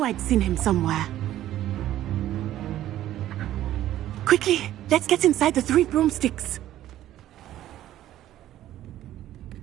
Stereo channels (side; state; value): left; quieter; 13.1 dB